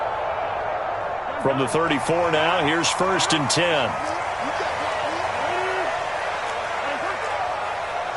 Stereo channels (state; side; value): identical; both; correlation 1.00